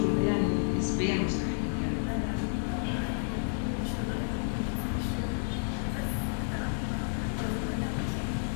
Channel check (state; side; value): silent; right; 57 dB below the other